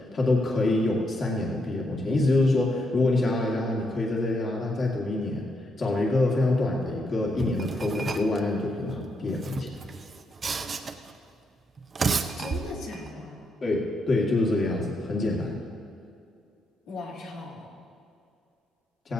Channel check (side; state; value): both; normal; correlation 0.80